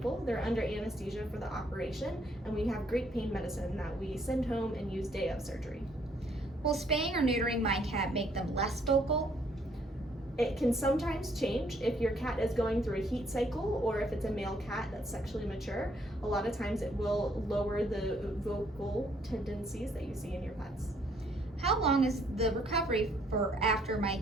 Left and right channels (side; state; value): both; normal; correlation 0.67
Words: They're under anesthesia for the operation, and we have great pain medicine that we send home and use day of surgery. Will spaying or neutering my cat make them less vocal? It can sometimes change if your cat is going through a heat cycle or if it's a male cat that's sexually mature. A lot of times it will lower the vocal tendencies that you see in your pets. How long is the recovery for after my